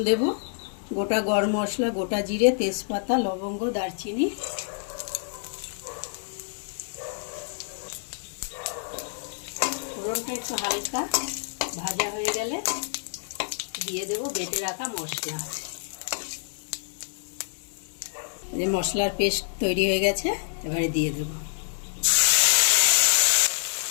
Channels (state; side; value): silent; right; digital silence